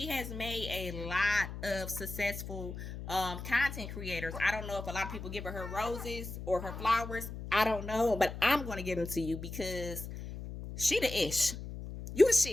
has made a lot of successful content creators. I don't know if a lot of people give her roses or her flowers. I don't know, but I'm gonna give them to you because she the ish. You the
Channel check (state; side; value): noise; left; hum, 9 dB below the sound